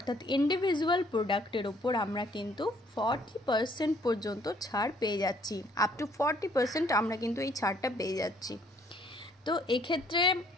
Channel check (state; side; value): normal; both; correlation 0.63